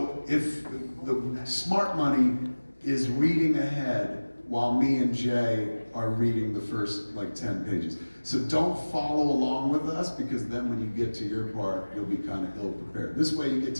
if the smart money is reading ahead while me and Jay are reading the first like 10 pages. So don't follow along with us, because then when you get to your part, you'll be kind of ill prepared. This way you get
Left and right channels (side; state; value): both; inverted; correlation -1.00